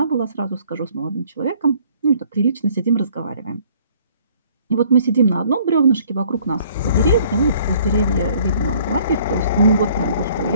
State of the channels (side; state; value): both; inverted; correlation -0.59